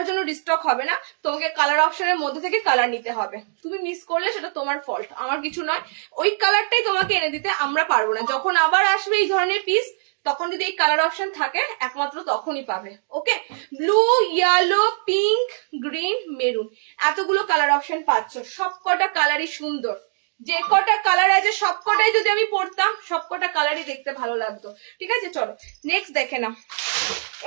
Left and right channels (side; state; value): left; silent; digital silence